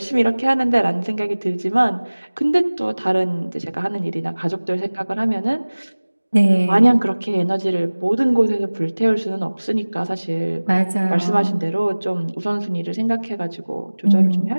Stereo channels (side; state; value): both; inverted; correlation -1.00